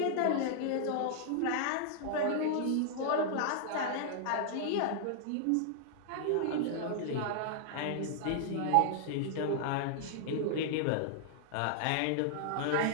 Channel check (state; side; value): different; both; correlation -0.01